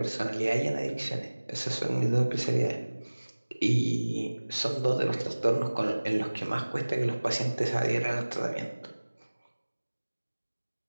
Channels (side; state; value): both; inverted; correlation -1.00